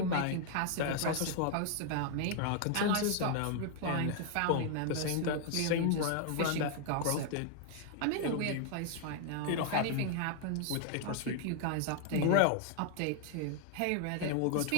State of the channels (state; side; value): different; both; correlation 0.00